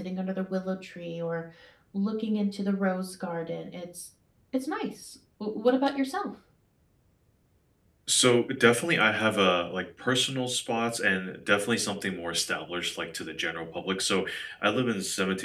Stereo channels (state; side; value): identical; both; correlation 1.00